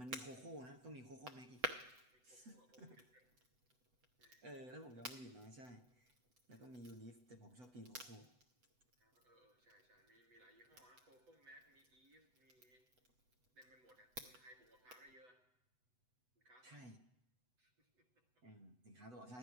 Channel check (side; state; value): left; late; 8.0 ms